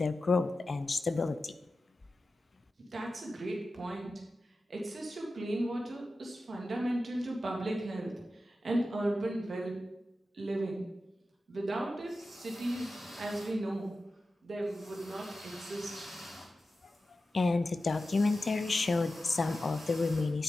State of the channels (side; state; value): both; normal; correlation 0.93